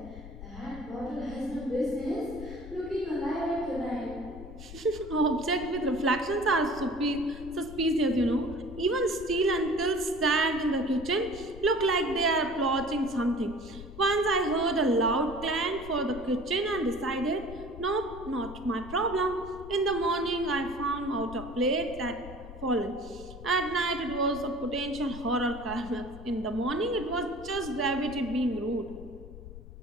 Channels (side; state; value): left; noise; rumble, 14 dB below the sound